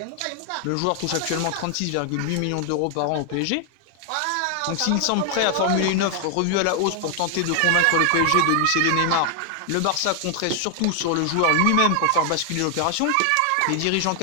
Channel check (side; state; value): both; different; correlation 0.00